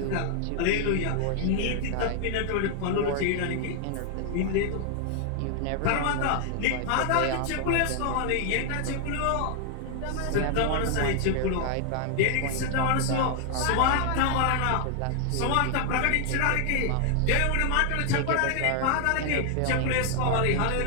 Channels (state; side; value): different; both; correlation 0.00